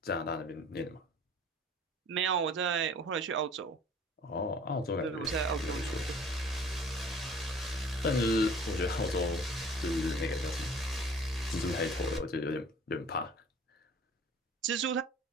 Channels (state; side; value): normal; both; correlation 0.49